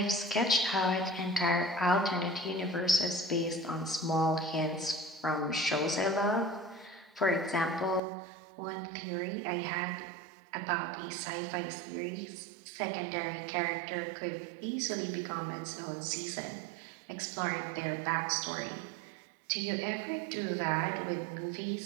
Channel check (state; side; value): drops out; left; at 8.0 s